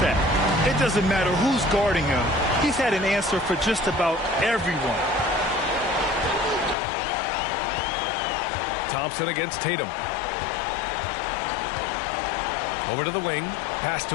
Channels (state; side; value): drops out; right; at 6.8 s